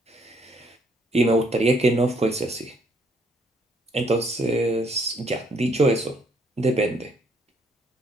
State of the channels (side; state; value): both; normal; correlation 0.67